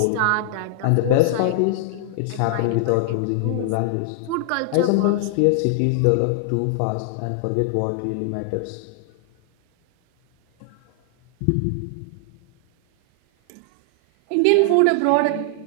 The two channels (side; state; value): both; different; correlation 0.00